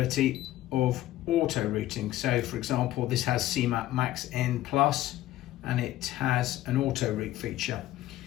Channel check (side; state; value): right; quieter; 14.9 dB